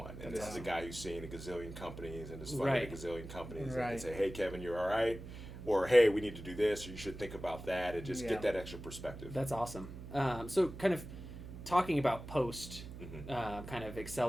And this is a guy who's seen a gazillion companies and has funded a gazillion companies. And can say, hey, Kevin, you're all right. Or, hey, we need to do this, or you should think about that, and just get that extra perspective. That's awesome. So kind of talking about post kind of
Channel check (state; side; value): noise; right; hum, 11 dB below the sound